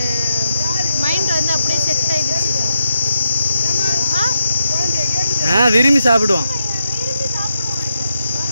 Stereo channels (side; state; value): both; inverted; correlation -0.85